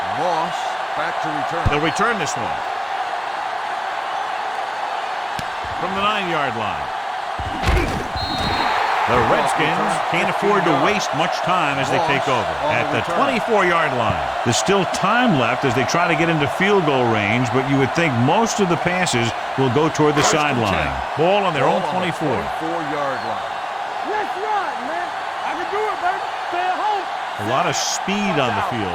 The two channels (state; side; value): identical; both; correlation 1.00